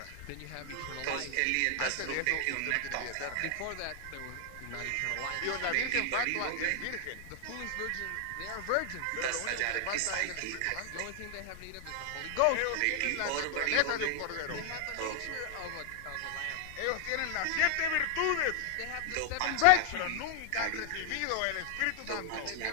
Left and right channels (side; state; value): both; different; correlation 0.00